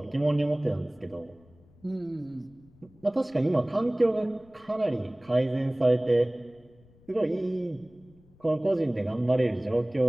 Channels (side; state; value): left; noise; rumble, 28 dB below the sound